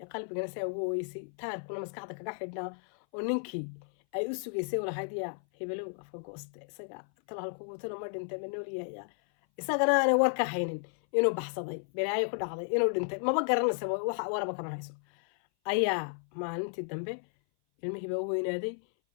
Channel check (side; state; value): right; silent; 56 dB below the other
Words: qalbigana saa ugu oweysay taarkuna maskaxda kaga xidhnaa oo ninkii ay u sugaysay walahayd yaa hebelow afka gooste isaga tala halkugu tala ma dhintay ma nool yahay isagana aanay war ka haynin inuu baxsaday balaayo ku dhacday inuu dhintay maba garanaysa waxa waraba kama hayso ayaa maalintii dambe ilmihii baa u weynaaday